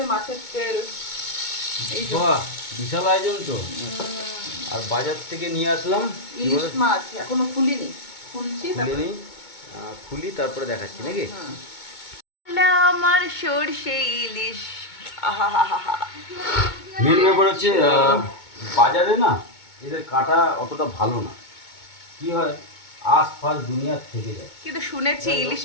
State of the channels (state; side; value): late; right; 2.2 ms